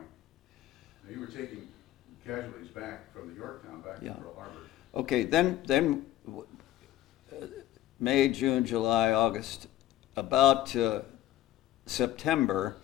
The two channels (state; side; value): quieter; right; 13.6 dB